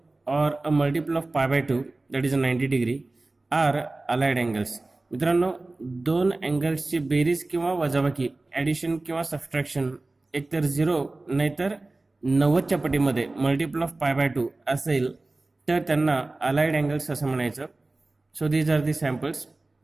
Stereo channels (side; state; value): left; quieter; 3.1 dB